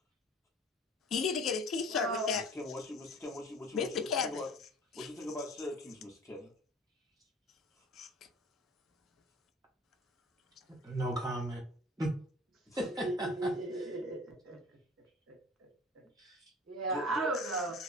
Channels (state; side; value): normal; both; correlation 0.44